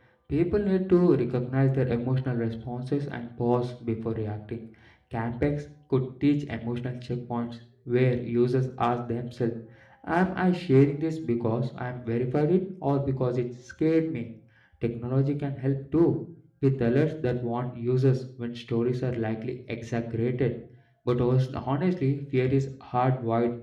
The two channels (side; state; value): both; identical; correlation 1.00